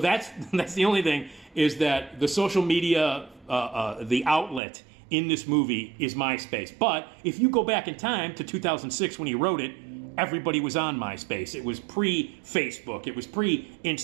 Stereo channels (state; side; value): drops out; left; at 4.6 s